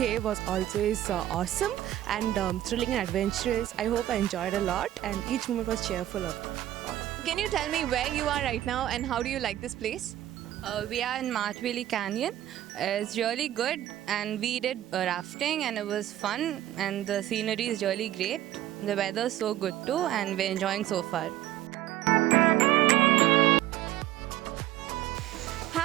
was always awesome and thrilling and adventurous. I hope I enjoyed a lot and each moment was cheerful of all. Can you tell me where you are right now and how do you like this place? We are in Mathwili Canyon. It's really good and we did rafting and it was fun and the scenery is really great. The weather is so good too and we're enjoying so far.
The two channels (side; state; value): left; quieter; 13.4 dB